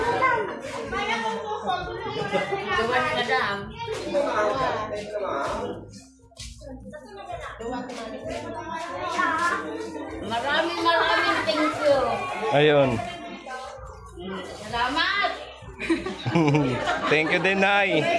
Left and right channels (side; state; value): both; identical; correlation 1.00